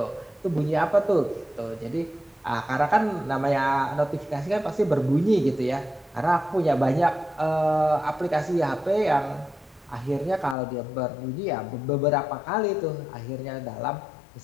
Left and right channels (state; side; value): drops out; right; at 10.6 s